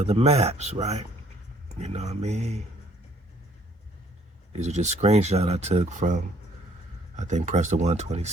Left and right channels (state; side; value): normal; both; correlation 0.61